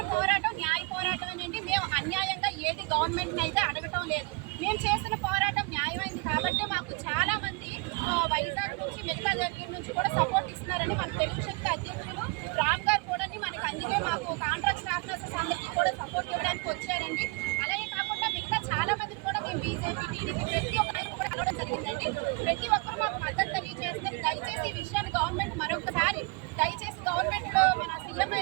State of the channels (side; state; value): left; quieter; 28.2 dB